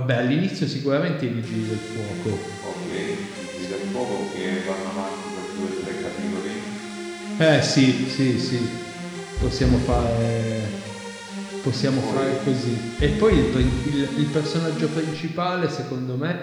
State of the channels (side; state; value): both; identical; correlation 1.00